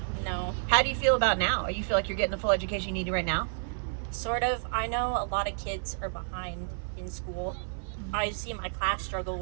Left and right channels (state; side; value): silent; left; 58 dB below the other